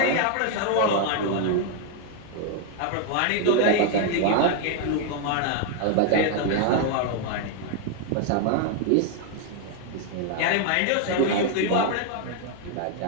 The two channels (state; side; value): different; both; correlation 0.00